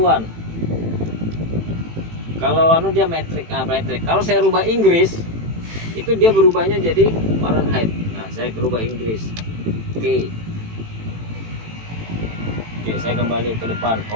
Kalau anu dia metrik, metrik. Kalau saya rubah Inggris, itu dia berubahnya jadi Fahrenheit. Nah, saya rubah Inggris. Oke. Oke, saya kembali ke depan,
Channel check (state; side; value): late; left; 18 ms